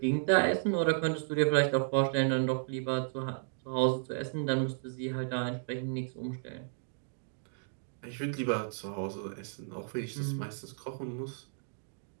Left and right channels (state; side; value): silent; left; digital silence